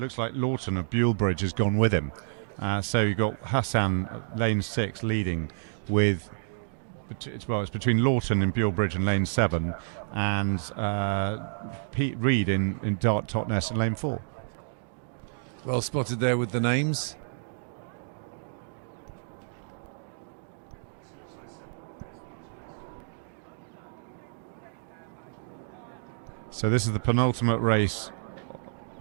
like Lawton of Bulebridge has gone with him. So you've got Hassan, lane 6, leading with... it's between Lawton in Bulebridge and lane 7, and Pete Reed in Dart Totnes in lane 4. Well spotted there with the names. So this is the penultimate race.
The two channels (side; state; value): left; silent; digital silence